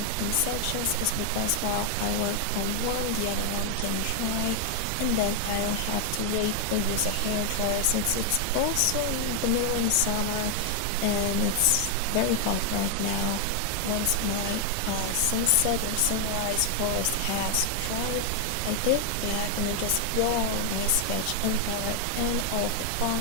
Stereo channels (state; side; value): different; both; correlation 0.00